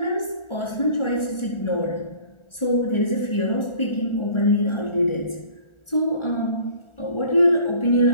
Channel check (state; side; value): late; right; 1.4 ms